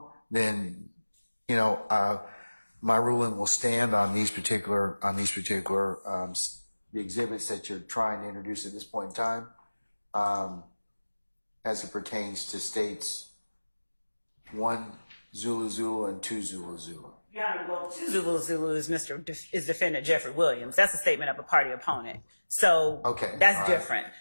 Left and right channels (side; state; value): both; inverted; correlation -1.00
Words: then, my ruling will stand on these particular, the exhibits that you're trying to introduce at this point in time, as it pertains to states 1 Zulu Zulu and 2 Zulu Zulu. Your Honor, well, 2 Zulu Zulu is defendant Jeffrey Williams. That's a statement of a party opponent. So okay, that's different.